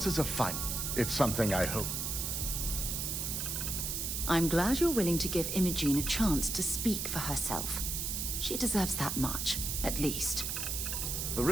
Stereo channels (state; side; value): noise; right; hiss, 2 dB below the sound